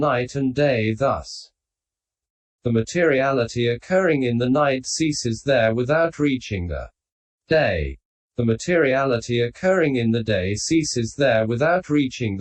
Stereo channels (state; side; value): identical; both; correlation 1.00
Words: and day thus. The materiality occurring in the night ceases there without reaching the day. The materiality occurring in the day ceases there without reaching